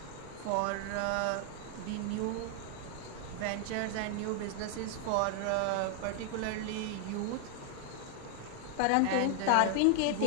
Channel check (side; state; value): both; different; correlation 0.00